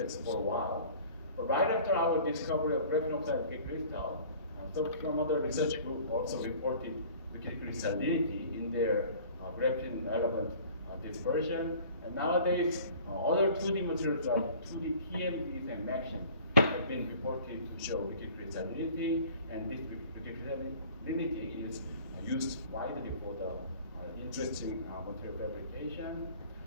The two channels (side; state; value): both; inverted; correlation -0.48